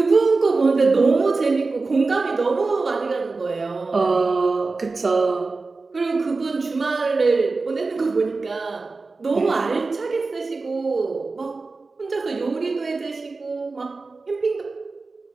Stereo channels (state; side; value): quieter; left; 3.9 dB